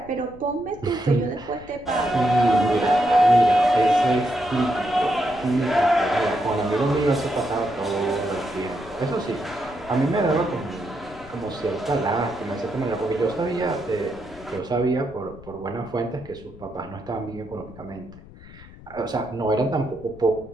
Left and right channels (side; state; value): left; noise; rumble, 20 dB below the sound